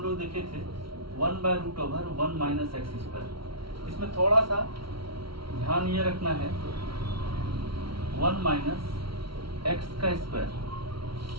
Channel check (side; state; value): left; late; 0.74 ms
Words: लोग देखे थे 1/√1 माइनस एक्स स्क्वायर, इसमें थोड़ा सा ध्यान ये रखना है 1 माइनस एक्स का स्क्वायर,